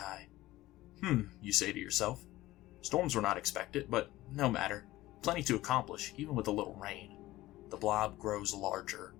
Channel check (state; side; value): quieter; right; 17.0 dB